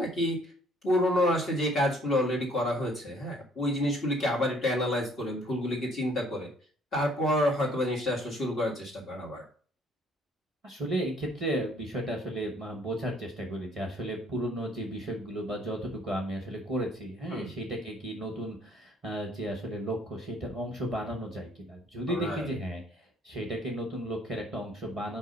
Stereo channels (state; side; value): normal; both; correlation 0.60